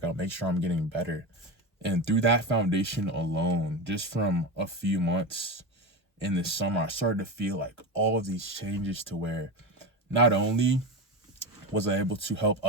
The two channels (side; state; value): both; normal; correlation 0.20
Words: make sure I'm getting better. And through that foundation alone, just from a few months in the summer, I started to feel like all of these changes to where not only was I able to help